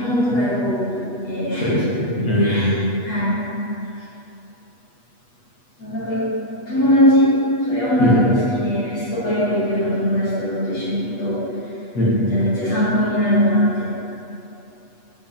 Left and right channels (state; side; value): late; right; 8.3 ms